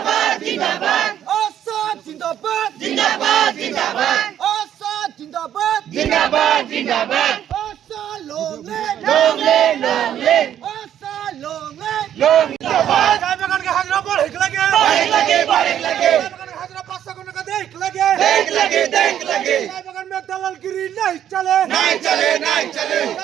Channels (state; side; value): quieter; left; 10.4 dB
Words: Assad Zindabad! Assad Zindabad! জিন্দাবাদ Assad long live! Long live Assad long live! চায় বাগানকে হাজরা পর হেক লাগে. বারেক লাগে চায় বাগানকে হাজরা 500 টাকা দেখ লাগে. দেখ লাগে चाय बगान में दलालगिरी नहीं चले. नहीं चले